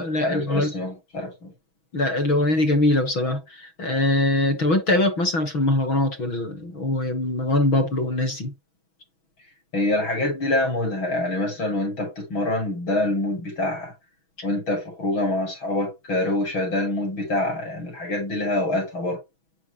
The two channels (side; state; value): right; late; 6.2 ms